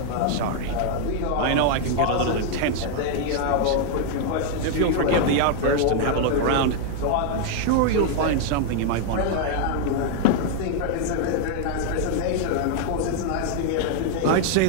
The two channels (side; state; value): both; different; correlation 0.00